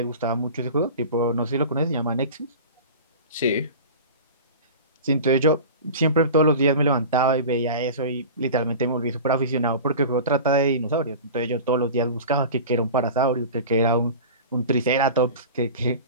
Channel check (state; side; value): inverted; both; correlation -0.35